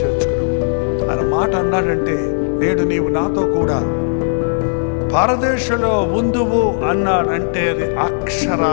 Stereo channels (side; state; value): right; silent; digital silence